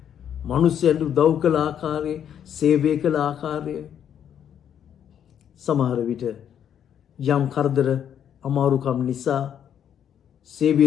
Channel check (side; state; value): right; quieter; 9.2 dB